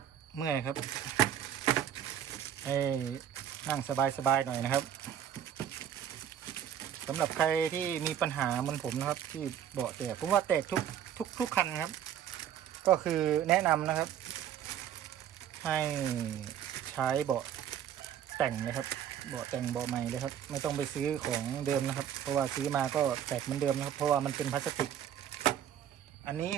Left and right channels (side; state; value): left; quieter; 9.9 dB